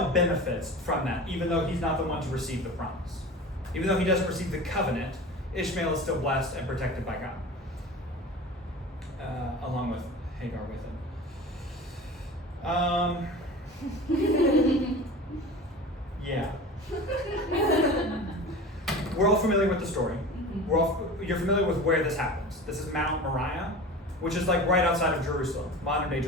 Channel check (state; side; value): normal; both; correlation 0.35